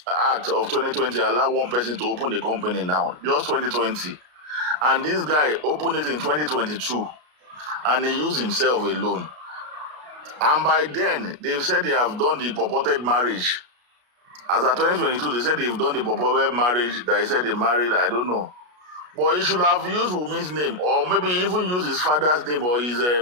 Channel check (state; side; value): late; left; 33 ms